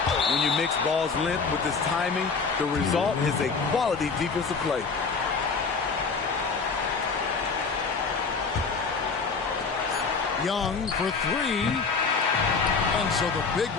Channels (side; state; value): right; quieter; 4.9 dB